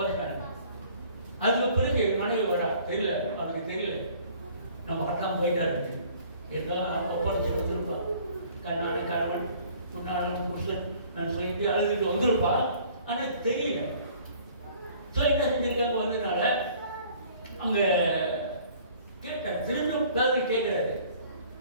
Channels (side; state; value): both; inverted; correlation -0.54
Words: அதுக்கு பிறகு மனைவி வரா, தெரியல, அவனுக்கு தெரியல நம்ம கட்டாம போயிட்டா இருக்கு. ஏதோ ஒப்படைச்சு வந்துருப்பான், கண்ணான கணவன் முன்னாள் புருஷன் நான் சொல்லிட்டு அழுதுட்டு வந்திருப்பான். ஆனால் தெரியல. ஸோ என்ன செஞ்சிருக்காங்க வந்ததுனால அங்கே கேட்டார், திரும்பவும் பேரு கேட்குறாரு,